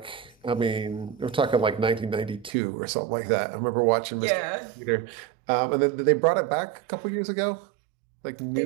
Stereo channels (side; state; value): left; drops out; at 2.5 s